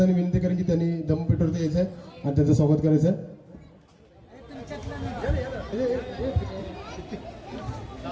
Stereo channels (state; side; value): identical; both; correlation 1.00